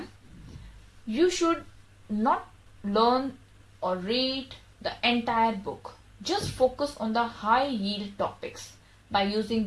you should not learn or read the entire book. Just focus on the high yield topics. By using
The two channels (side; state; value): both; identical; correlation 1.00